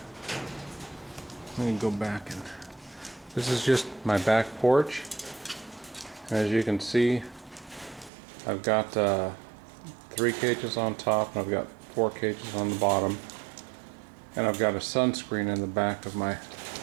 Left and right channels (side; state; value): left; drops out; at 8.1 s